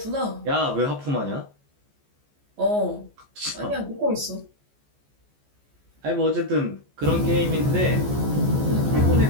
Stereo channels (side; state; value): left; late; 14 ms